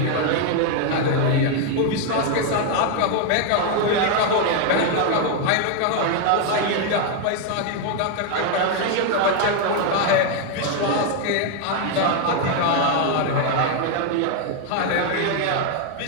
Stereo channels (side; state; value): both; different; correlation 0.00